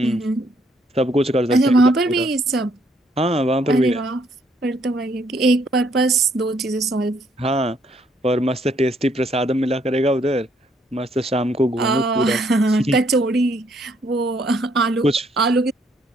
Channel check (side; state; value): both; normal; correlation 0.69